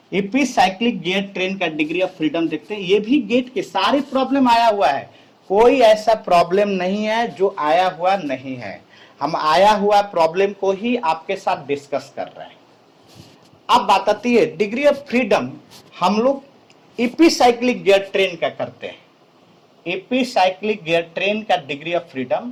Epicyclic gear train का डिग्री ऑफ फ्रीडम देखते हैं। ये भी गेट के सारे प्रॉब्लम आया हुआ है, कोई ऐसा प्रॉब्लम नहीं है जो आया हुआ नहीं है। हम आया हुआ प्रॉब्लम को ही आपके साथ डिस्कस कर रहे हैं। अब बात आती है डिग्री ऑफ फ्रीडम, हम लोग इपीसाइक्लिक गियर ट्रेन का करते हैं, इपीसाइक्लिक गियर ट्रेन का डिग्री ऑफ फ्रीडम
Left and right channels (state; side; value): identical; both; correlation 1.00